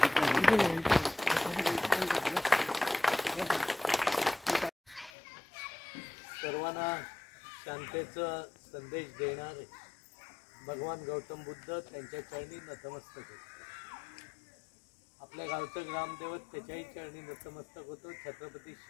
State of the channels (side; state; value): right; drops out; at 5.1 s